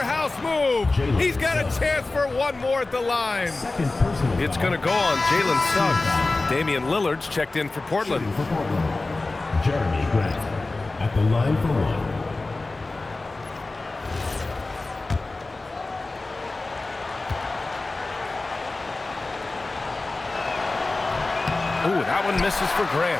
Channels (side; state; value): right; quieter; 3.3 dB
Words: move! He's got a chance for one more at the line. It's going to go on Jalen Suggs. Damian Lillard's checked in for Portland. Jeremy Grant at the line for one. Ooh, that one misses for